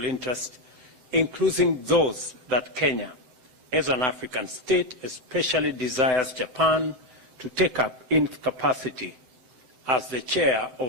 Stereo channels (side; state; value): left; late; 7.8 ms